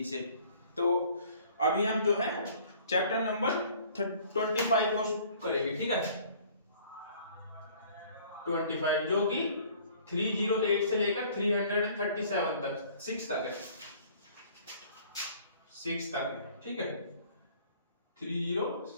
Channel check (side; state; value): both; inverted; correlation -0.54